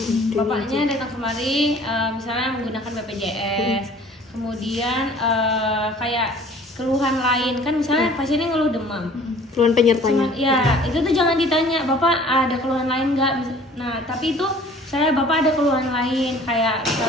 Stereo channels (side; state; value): both; normal; correlation 0.51